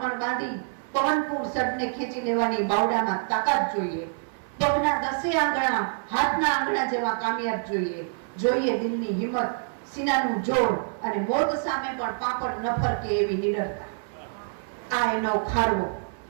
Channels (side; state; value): left; silent; 61 dB below the other